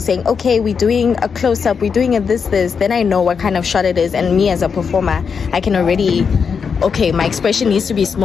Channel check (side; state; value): right; quieter; 6.1 dB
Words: saying, okay, we're doing a close-up, we're doing a this, then I know what kind of shot it is. And me as a performer, I can already, okay, my expression needs to be